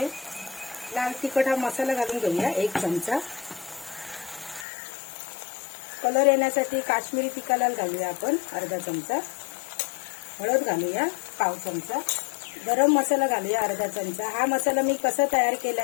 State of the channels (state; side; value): drops out; right; at 4.7 s